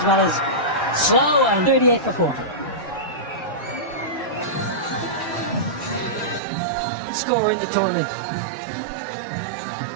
well as slow and 38 for 4. Scorer in the tournament.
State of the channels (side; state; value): left; drops out; at 6.4 s